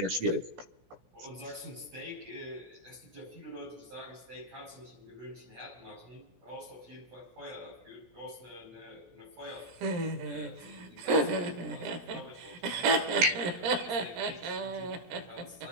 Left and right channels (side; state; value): left; late; 17 ms